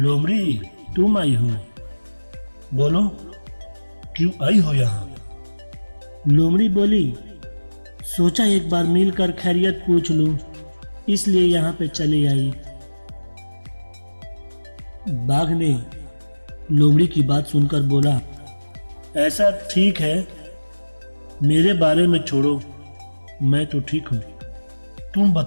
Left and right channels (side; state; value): both; inverted; correlation -1.00